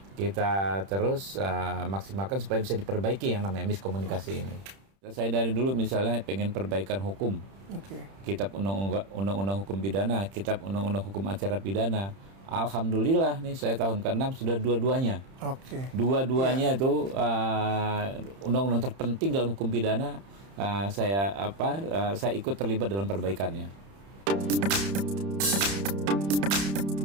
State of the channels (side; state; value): left; late; 31 ms